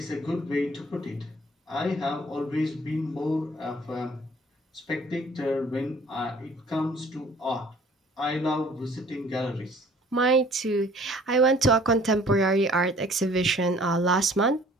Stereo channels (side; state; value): both; normal; correlation 0.54